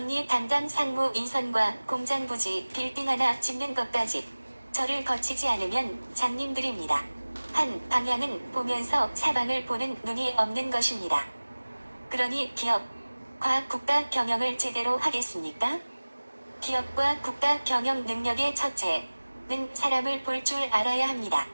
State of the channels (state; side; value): inverted; both; correlation -1.00